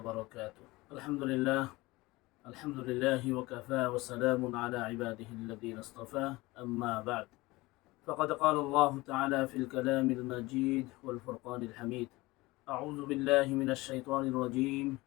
الحمد لله وكفى وسلام على عباده الذين اصطفى. أما بعد، فقد قال الله تعالى في الكلام المجيد والفرقان الحميد: أعوذ بالله من الشيطان الرجيم.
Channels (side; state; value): right; quieter; 21.1 dB